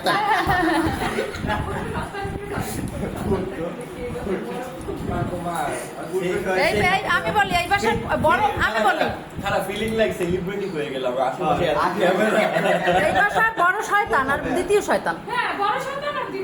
এই এই আমি বলি এই বাসার বড়, আমি বলি খারাপ ফিলিং লাইক সেলিব্রিটি হয়ে গেলাম আশেপাশে ক্যামেরা। এই বাসার বড় শয়তান আর দ্বিতীয় শয়তান। হ্যাঁ, বড় সন্তান আর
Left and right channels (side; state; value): both; identical; correlation 1.00